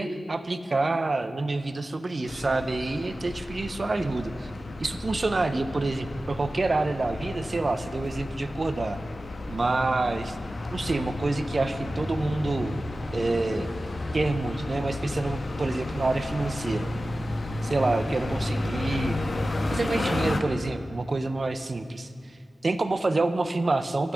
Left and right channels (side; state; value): both; normal; correlation 0.95